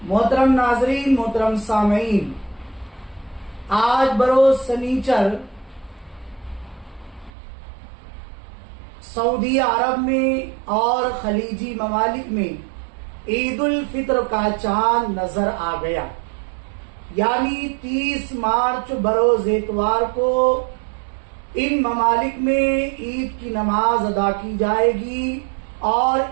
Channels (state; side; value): drops out; left; at 7.3 s